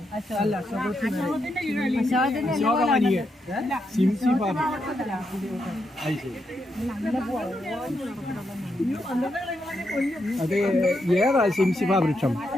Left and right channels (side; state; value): both; normal; correlation 0.82